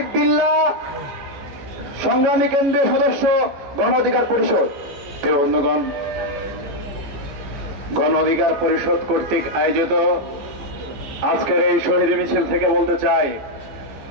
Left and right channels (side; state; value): left; late; 14 ms